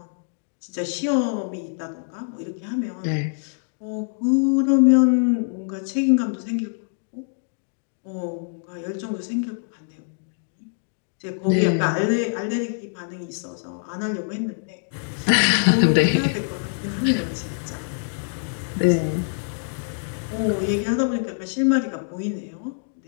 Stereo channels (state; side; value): silent; right; digital silence